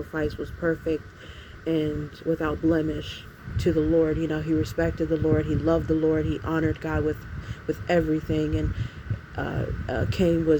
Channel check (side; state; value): both; identical; correlation 1.00